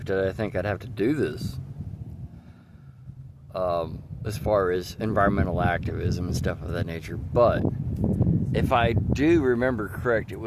did I think I'd have to do this. As far as environmental activism and stuff of that nature. But if I do remember correct, it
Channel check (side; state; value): both; identical; correlation 1.00